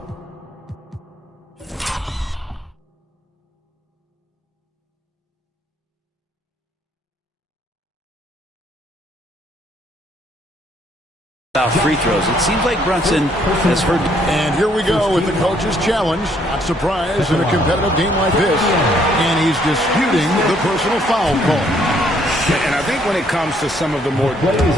About free throws. It seems like Brunson has heard. And here we go with the coach's challenge. Not surprised in a competitive game like this. And he's disputing the personal foul call. And I think when it comes to some of the more Play is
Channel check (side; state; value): both; normal; correlation 0.67